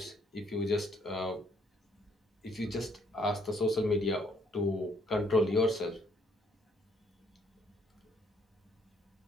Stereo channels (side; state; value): both; normal; correlation 0.67